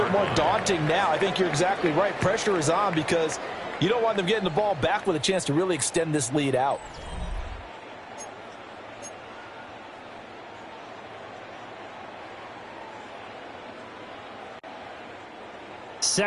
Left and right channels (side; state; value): both; identical; correlation 1.00